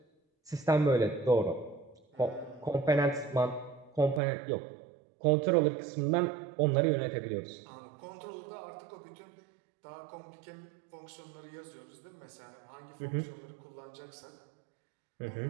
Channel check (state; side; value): drops out; left; at 4.2 s